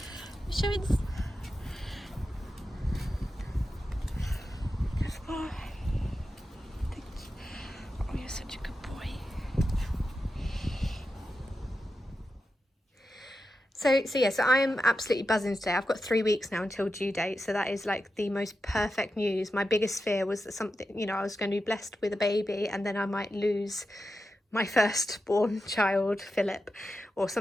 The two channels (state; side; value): normal; both; correlation 0.90